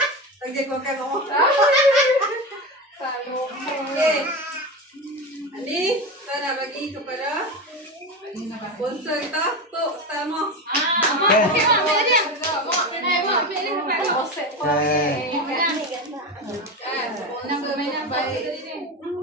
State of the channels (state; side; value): normal; both; correlation 0.21